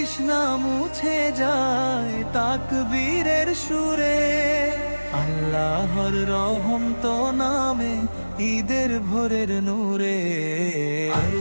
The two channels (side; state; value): both; inverted; correlation -1.00